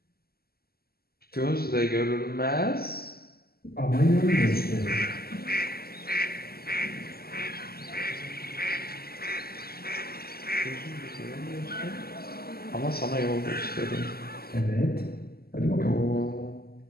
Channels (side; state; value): right; late; 0.45 ms